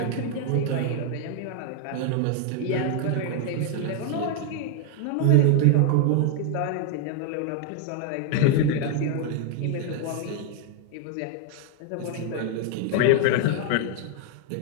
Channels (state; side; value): different; both; correlation 0.00